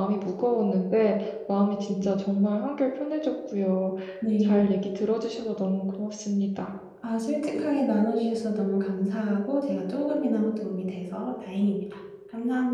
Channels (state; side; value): identical; both; correlation 1.00